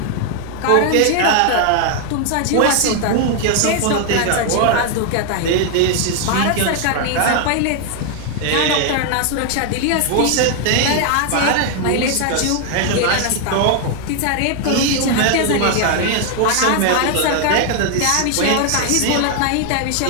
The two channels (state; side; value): different; both; correlation 0.00